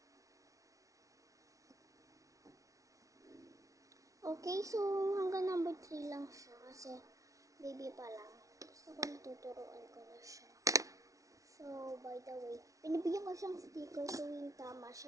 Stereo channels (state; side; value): late; left; 0.16 ms